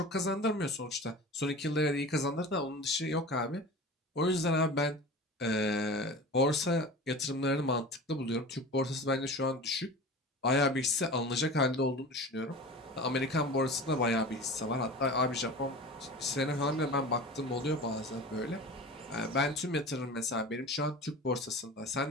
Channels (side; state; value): both; normal; correlation 0.35